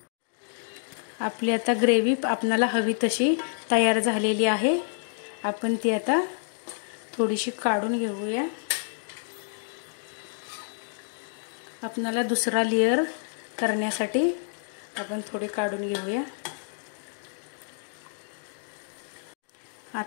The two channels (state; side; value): silent; right; digital silence